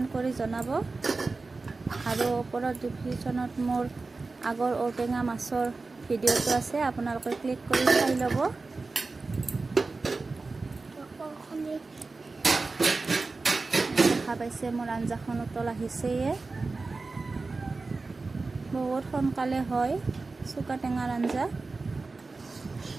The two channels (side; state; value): left; quieter; 3.8 dB